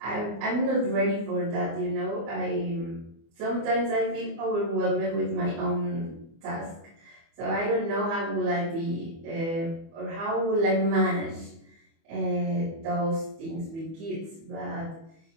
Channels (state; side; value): late; left; 24 ms